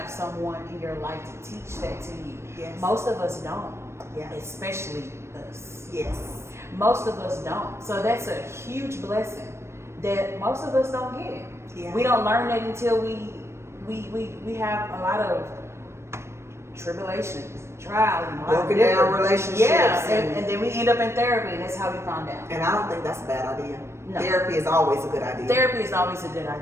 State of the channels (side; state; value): left; late; 0.13 ms